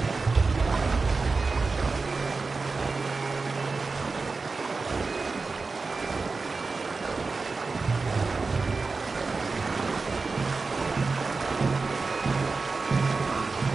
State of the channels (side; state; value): left; quieter; 4.1 dB